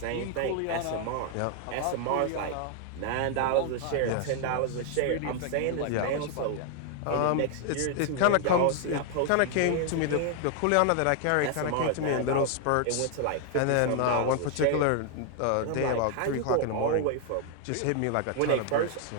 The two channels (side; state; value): both; different; correlation 0.00